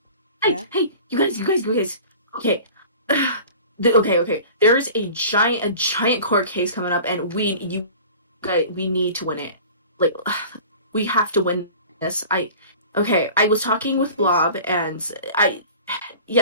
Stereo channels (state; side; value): inverted; both; correlation -0.41